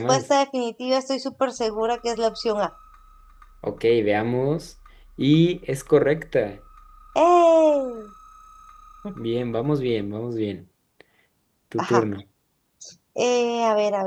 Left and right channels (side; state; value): both; identical; correlation 1.00